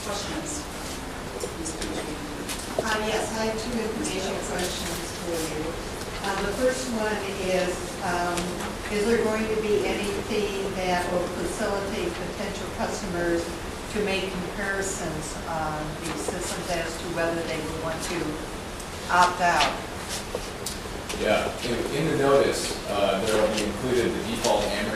Questions? Ms. Busey? Yes, I have 2 information questions for you. The first one is there going to be anything that will facilitate potential customers to make comparisons on these systems as to whether they would want to opt out? Yeah, in the notice, there will be included the default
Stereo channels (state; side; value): identical; both; correlation 1.00